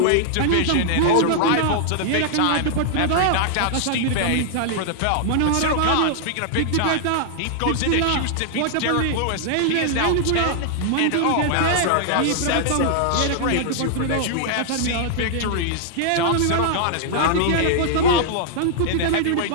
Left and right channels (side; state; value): both; different; correlation -0.01